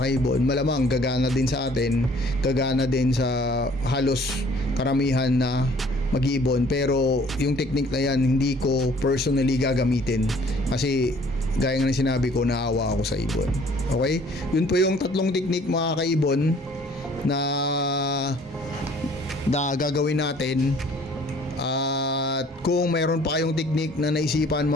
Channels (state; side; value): normal; both; correlation 0.56